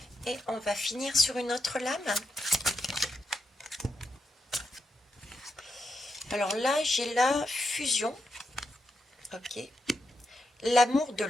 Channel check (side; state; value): both; normal; correlation 0.85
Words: Et on va finir sur une autre lame. Alors là, j'ai la fusion. Ok. L'amour de